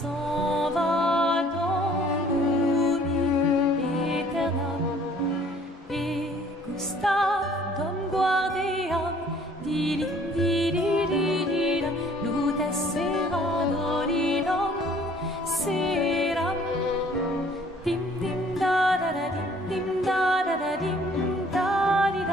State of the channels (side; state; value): both; normal; correlation 0.57